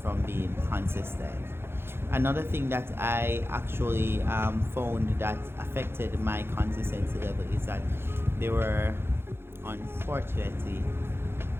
being consistent. Another thing that I actually found that affected my consistency level is that there were, unfortunately,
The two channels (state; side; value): late; left; 0.11 ms